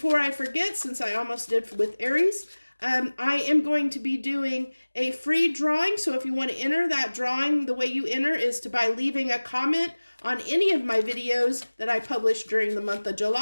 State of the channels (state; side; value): inverted; both; correlation -1.00